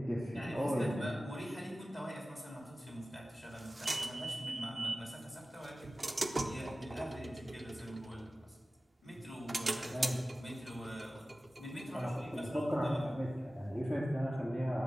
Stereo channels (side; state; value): both; normal; correlation 0.96